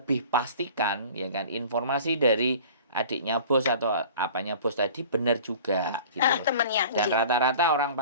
pastikan ya kan informasi dari adiknya bos atau apanya bos tadi benar juga gitu loh. Temennya. Dan rata-rata orang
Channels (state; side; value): inverted; both; correlation -0.43